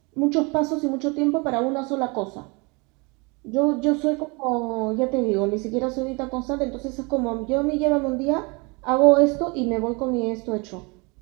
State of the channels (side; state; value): left; quieter; 29.0 dB